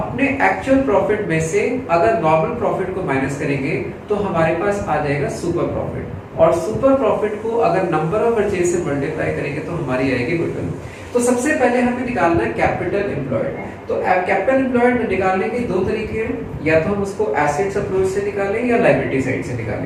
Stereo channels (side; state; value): both; identical; correlation 1.00